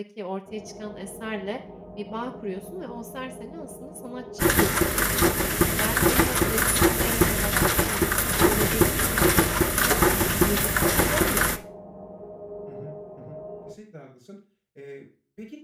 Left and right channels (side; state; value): both; identical; correlation 1.00